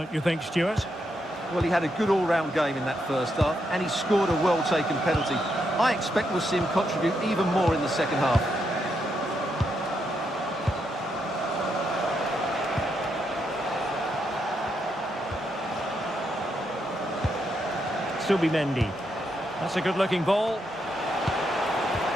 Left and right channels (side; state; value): both; normal; correlation 0.80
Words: you think, Stuart? Well, he had a good all-round game in that first half, and he scored a well-taken penalty. I expect we'll see him contribute even more in the second half. Subimendi. That's a good-looking ball.